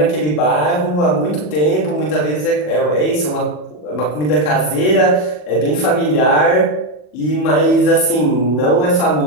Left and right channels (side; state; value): right; late; 40 ms